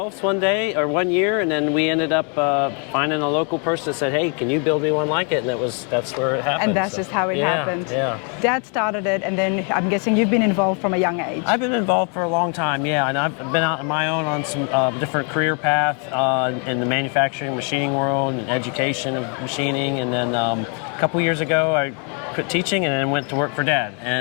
one year, and then we ended up finding a local person that said, hey, can you build me one like it? And that's where it happened. And that's just how it happened. Yeah. Dad started it, and then I'm guessing you've been involved from a young age. I've been involved for a long time, yeah, and I've been out on my own on some different career path in the manufacturing, machining world, and education of machining, and then a couple years ago I quit teaching and then went to work for Dad.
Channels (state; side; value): quieter; right; 38.8 dB